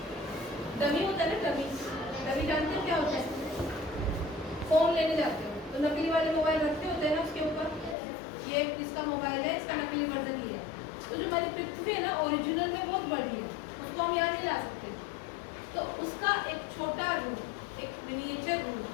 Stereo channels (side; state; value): right; drops out; at 8.0 s